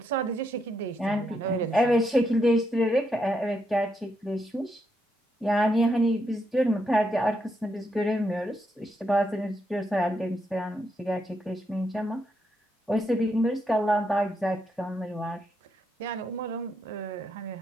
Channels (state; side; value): normal; both; correlation 0.79